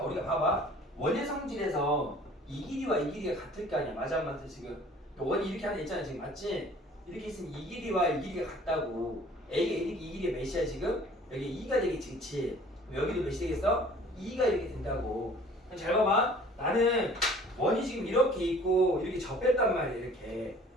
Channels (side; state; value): both; normal; correlation 0.51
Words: 우리가 봐봐. 원의 성질에서 이 길이와 이 길이가 같을 거 아니야. 맞아 안 맞아 지금. 원이 이렇게 하나 있잖아 지금 맞지? 이렇게 있으면 이 길이와 이 길이가 같다고. A가 1이니까 이 길이가 몇이야 지금? 여기 2가 되겠지 그치? 여기도 몇이 되겠어? 2가 이렇게 된다고. 그럼 잘 봐봐. 나는 원이 지금 이렇게 있고 이렇게 접했단 말이야 이렇게.